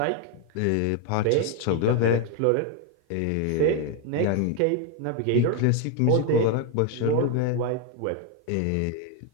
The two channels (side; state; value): both; different; correlation 0.01